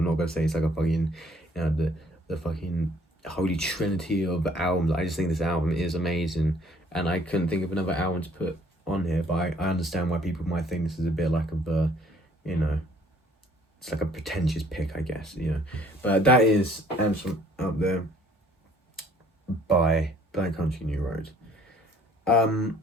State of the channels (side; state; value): both; normal; correlation 0.59